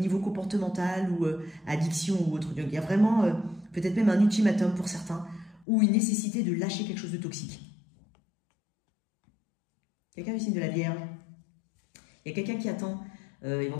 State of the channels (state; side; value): drops out; right; at 5.7 s